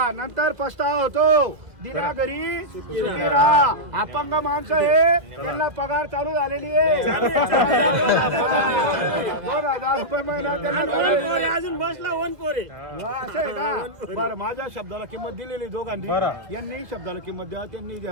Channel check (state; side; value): late; left; 1.9 ms